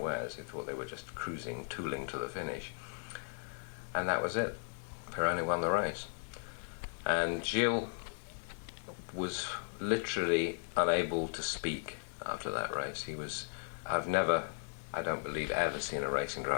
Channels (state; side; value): silent; right; digital silence